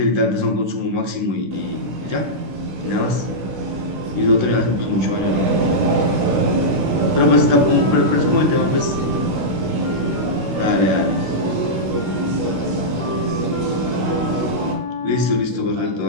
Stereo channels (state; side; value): late; left; 16 ms